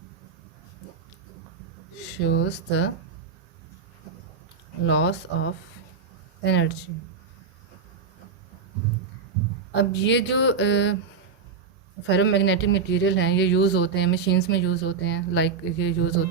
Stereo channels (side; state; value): left; quieter; 5.5 dB